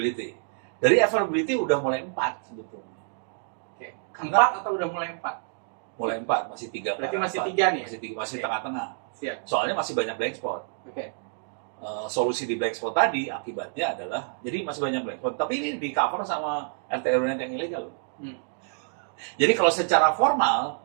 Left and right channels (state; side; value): silent; left; digital silence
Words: Dari availability udah mulai 4 sebetulnya. Oke. Karena- 4 atau udah mulai 4? Mulai 4, masih 3. Berarti masih 3 nih ya? Masih Oke. tengah-tengah. Siap. Soalnya masih banyak blank spot. Oke. Solusi di black spot tadi akibatnya adalah jadi masih banyak black spot, tapi ini di cover sama RT/RW yang ilegal. Jadi kalau secara formal